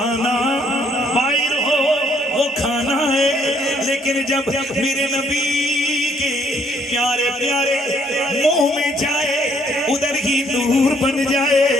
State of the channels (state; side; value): normal; both; correlation 0.67